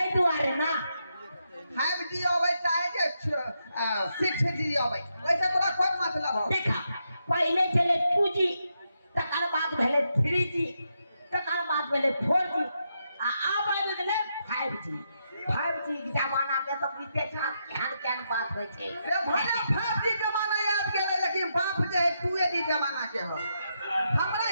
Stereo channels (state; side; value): inverted; both; correlation -0.82